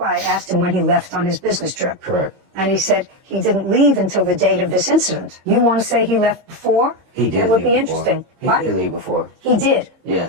I asked him when he left on his business trip. Correct. And he said he didn't leave until the date of this incident. You want to say he left before? He did That would leave be before. interesting. He What? did leave before. He did.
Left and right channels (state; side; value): late; left; 22 ms